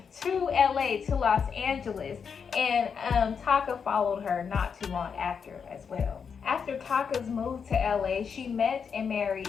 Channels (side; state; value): right; quieter; 6.4 dB